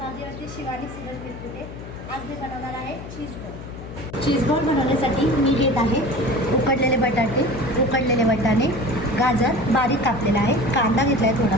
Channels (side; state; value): left; noise; hum, 12 dB below the sound